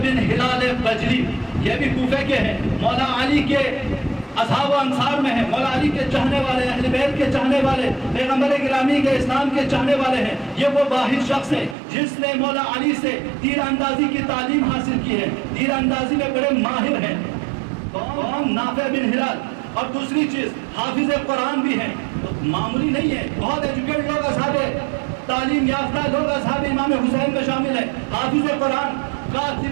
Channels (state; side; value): drops out; left; at 11.8 s